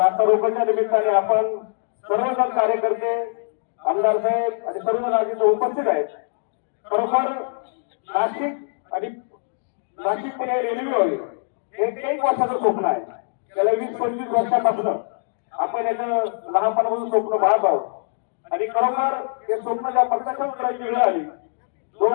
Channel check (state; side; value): silent; right; digital silence